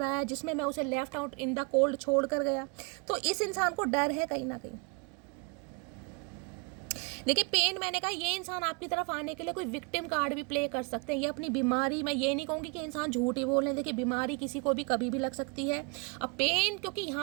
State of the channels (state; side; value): quieter; left; 32.1 dB